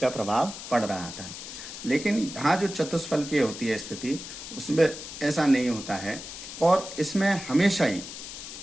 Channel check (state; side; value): noise; left; hiss, 11 dB below the sound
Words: प्रभाव पड़ रहा था। लेकिन यहाँ जो चतुष्फलकीय होती है स्थिति, उसमें ऐसा नहीं होता है और इसमें हमेशा ही